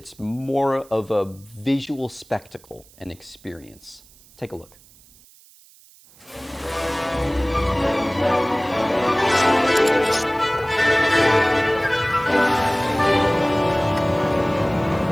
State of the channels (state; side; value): noise; right; hiss, 26 dB below the sound